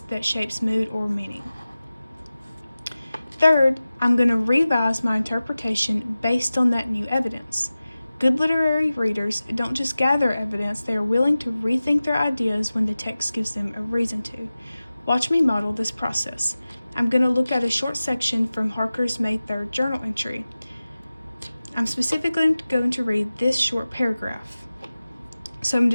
that shapes mood or meaning. Third, I'm going to revise my interpretation based on that new evidence. Good literary readers don't just gather evidence, they are willing to rethink their ideas when the text gives them a reason to. Watch me model this process. I'm going to look at a short section from Harker's May 3rd journal entry. I'm specifically going to read this short paragraph. So I'm going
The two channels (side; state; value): both; inverted; correlation -0.96